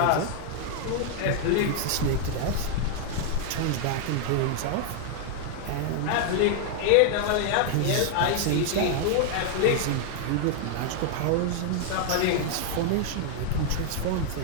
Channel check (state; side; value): different; both; correlation 0.00